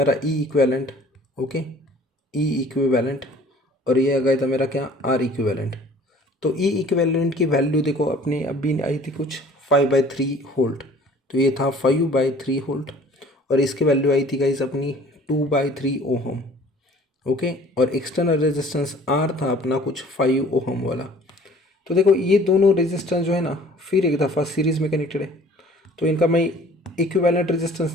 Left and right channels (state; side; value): normal; both; correlation 0.51